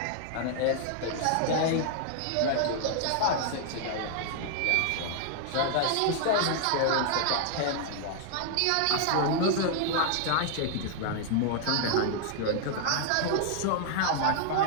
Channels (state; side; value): different; both; correlation 0.00